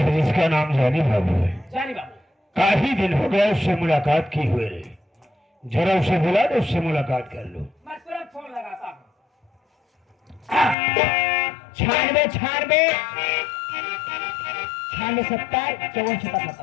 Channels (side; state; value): right; drops out; at 10.8 s